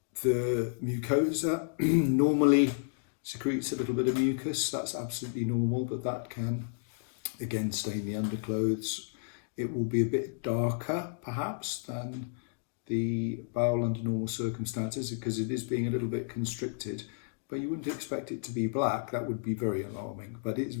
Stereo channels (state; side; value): silent; right; digital silence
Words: The mucosa normally secretes a little bit of mucus. That's absolutely normal, but that can again stain the underclothes. It will be a bit darker perhaps than the bowel under normal circumstances because it is being a little bit constricted, but you wouldn't expect it to be black. That would be very alarming, but it's